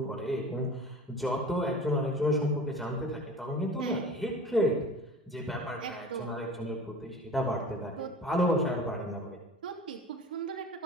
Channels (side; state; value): both; normal; correlation 0.39